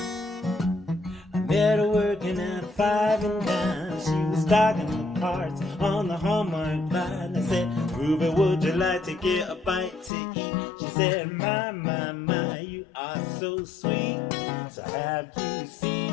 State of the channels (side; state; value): right; drops out; at 10.1 s